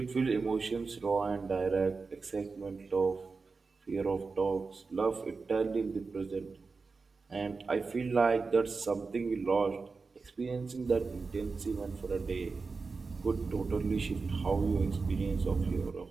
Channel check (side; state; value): left; quieter; 4.4 dB